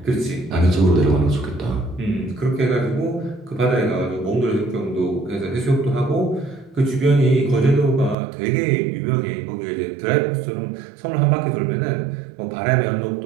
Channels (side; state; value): left; drops out; at 8.2 s